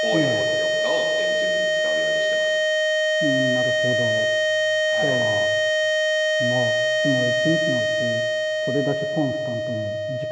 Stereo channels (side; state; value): both; identical; correlation 1.00